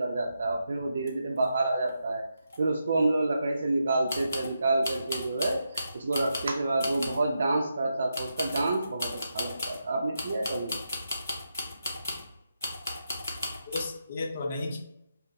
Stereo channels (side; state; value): both; inverted; correlation -0.85